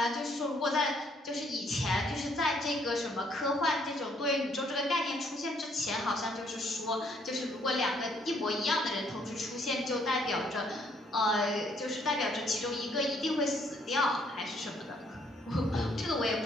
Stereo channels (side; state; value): both; normal; correlation 0.67